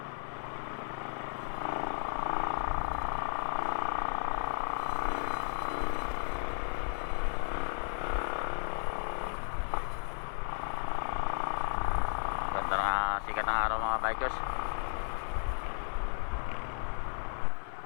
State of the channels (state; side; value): silent; right; 55 dB below the other